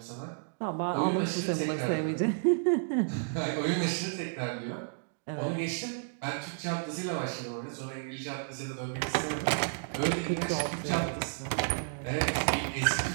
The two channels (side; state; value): left; silent; digital silence